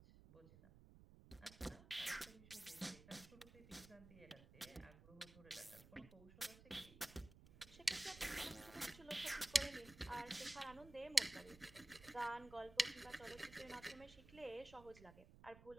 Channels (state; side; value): noise; right; rumble, 19 dB below the sound